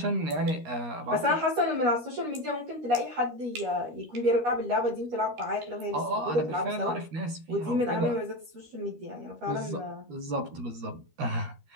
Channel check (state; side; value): late; left; 13 ms